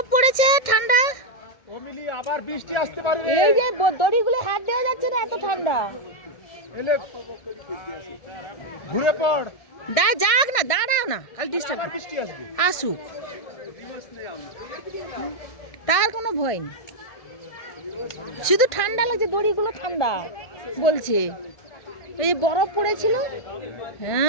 পড়েছে ঠান্ডা ও মিলি আবার বৃষ্টি আসতে পারে রে এই যে দড়িগুলো হাত দেওয়া যাচ্ছে না এত ঠান্ডা এলে ঘুরে পড় যাক না দাঁড়াও না খালি ডিস্টার্ব আবার বৃষ্টি আসবে আসুক তার কোনো ভয় নেই শুধু ঠান্ডা লাগছে দড়িগুলো ঠান্ডা বলছে এই বরফ পড়েছিল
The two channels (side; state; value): right; late; 1.6 ms